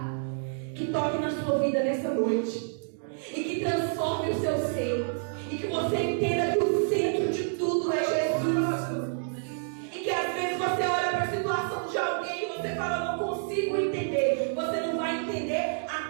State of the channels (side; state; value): left; silent; digital silence